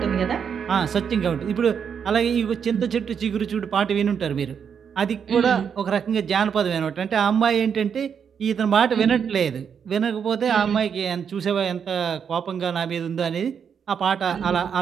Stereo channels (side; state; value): left; quieter; 7.3 dB